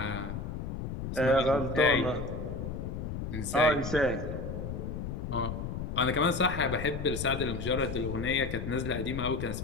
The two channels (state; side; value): noise; left; rumble, 5 dB below the sound